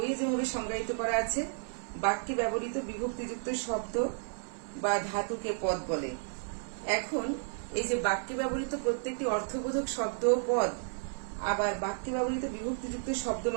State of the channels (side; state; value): left; silent; 56 dB below the other